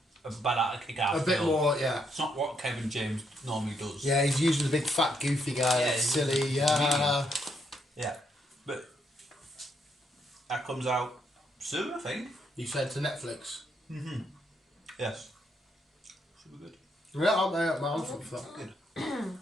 bad kick-out A bit film. more, yeah. It's not what Kevin James normally does. Yeah, he's usually the big fat goofy guy, Yeah, that's he's silly, a yeah. comedian. Yeah. But that comes out soon, I think. You said to Netflix. Yes. Should be good. Yeah, I'm for that. Good.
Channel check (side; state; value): both; normal; correlation 0.75